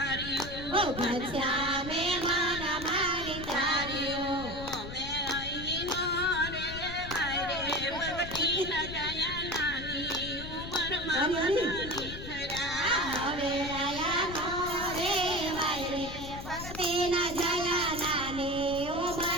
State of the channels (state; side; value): noise; left; rumble, 10 dB below the sound